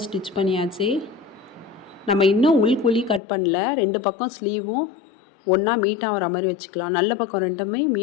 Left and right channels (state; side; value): drops out; right; at 3.2 s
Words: ஸ்டிச் பண்ணியாச்சு. நம்ம இன்னும் உள்குழி கட் பண்ணல. 2 பக்கம் ஸ்லீவும் ஒன்றா மீட் ஆகிற மாதிரி வச்சுக்கலாம். நல்ல பக்கம் ரெண்டுமே